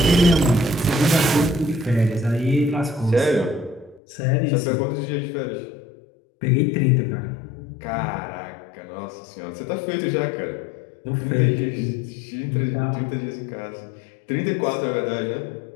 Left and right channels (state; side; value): drops out; right; at 4.0 s